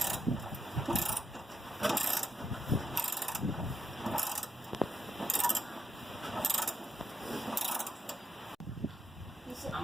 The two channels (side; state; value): both; normal; correlation 0.85